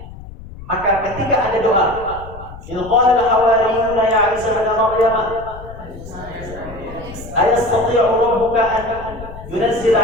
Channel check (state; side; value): noise; left; rumble, 14 dB below the sound